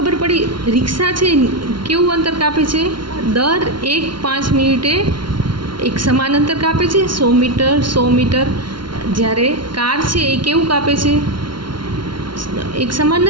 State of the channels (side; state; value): left; late; 0.73 ms